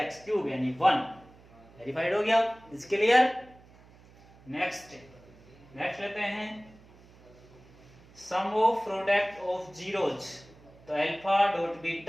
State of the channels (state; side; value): noise; right; hum, 25 dB below the sound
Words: cube यानी 1, वेरीफाइड हो गया, इज क्लियर। नेक्स्ट लेते हैं sum of product of zeros, तो alpha dot